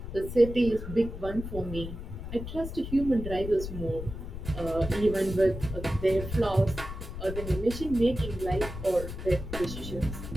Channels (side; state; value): left; noise; rumble, 8 dB below the sound